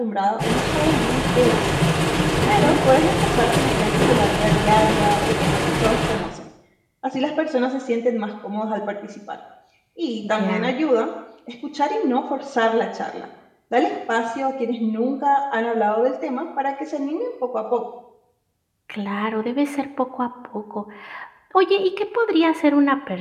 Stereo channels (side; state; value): both; identical; correlation 1.00